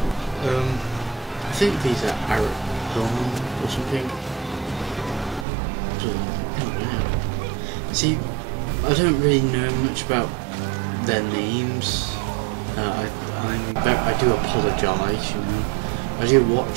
I think these are Arab or something. See, I don't really know much about their names. I do apologise, you know. I do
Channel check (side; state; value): left; drops out; at 5.5 s